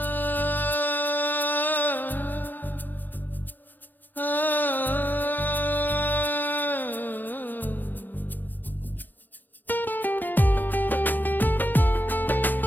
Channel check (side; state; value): right; late; 0.087 ms